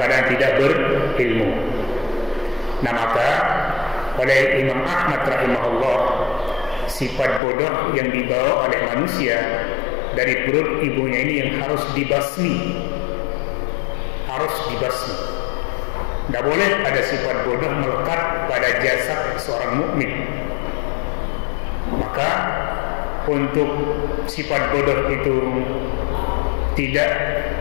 tidak berilmu. Nah, maka oleh Imam Ahmad rahimahullah, sifat bodoh yang dibawa oleh manusia dari perut ibunya ini yang harus dibasmi, harus dibasmi. Tidak boleh ada sifat bodoh melekat pada jasad seorang mukmin. Maka untuk sifat bodoh itu tidak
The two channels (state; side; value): drops out; right; at 7.4 s